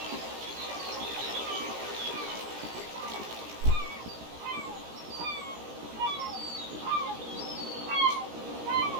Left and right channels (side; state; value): left; late; 17 ms